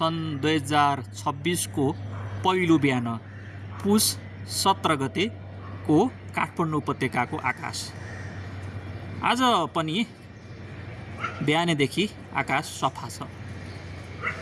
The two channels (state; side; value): identical; both; correlation 1.00